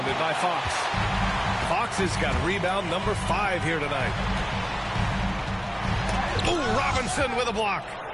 by Fox. Fox has got rebound number 5 here tonight. Ooh, Robinson with a block.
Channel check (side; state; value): both; identical; correlation 1.00